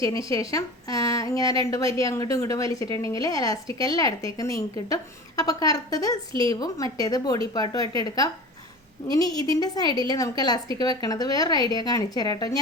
ശേഷം ഇങ്ങനെ രണ്ട് വലിയ അങ്ങോട്ടും ഇങ്ങോട്ടും വലിച്ചിട്ടുണ്ടെങ്കിൽ എലാസ്റ്റിക് എല്ലായിടത്തേക്കും നീങ്ങി കിട്ടും. അപ്പോൾ കറുത്തത് സ്ലീവും മറ്റേത് ബോഡി പാർട്ടുമായിട്ട് എടുക്കാം. ഇനി ഇതിൻ്റെ സൈഡിൽ നമുക്ക് എലാസ്റ്റിക് വെക്കണത് വേറൊരു ഐഡിയ കാണിച്ചു തരാം കേട്ടോ.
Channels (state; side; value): normal; both; correlation 0.35